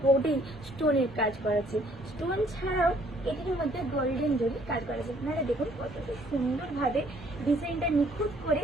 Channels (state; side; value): normal; both; correlation 0.62